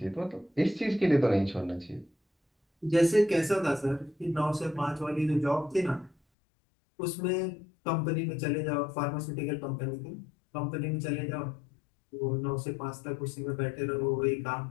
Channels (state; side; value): drops out; right; at 6.2 s